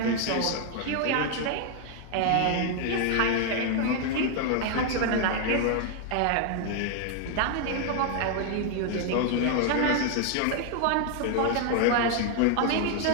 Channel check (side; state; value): both; different; correlation 0.00